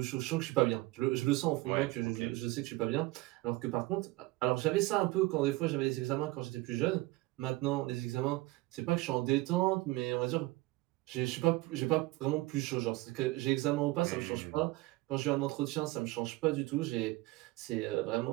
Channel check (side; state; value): left; quieter; 20.2 dB